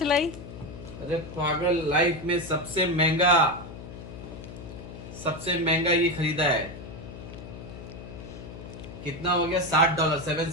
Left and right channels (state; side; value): noise; left; hum, 12 dB below the sound